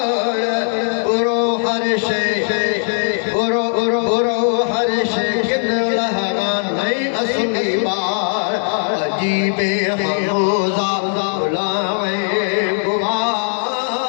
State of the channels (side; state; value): right; silent; digital silence